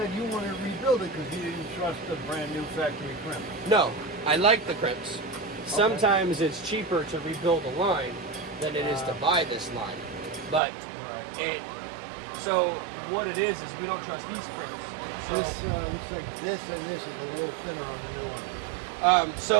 you wanted to rebuild it because you didn't trust the brand new factory crimp. No, I like the crimps. Sometimes it's cheaper to rebuild a line than it is to buy this line. But so what it is we don't trust these crimps. So This looks like this and this is a little thinner on the new one.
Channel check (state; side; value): drops out; left; at 10.6 s